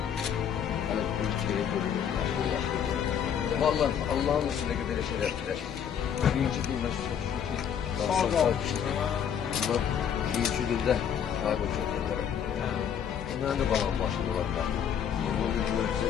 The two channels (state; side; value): quieter; right; 8.4 dB